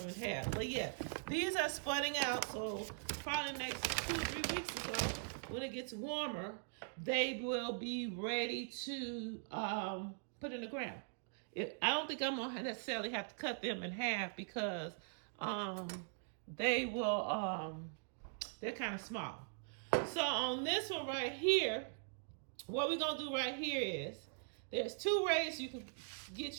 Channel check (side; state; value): left; silent; digital silence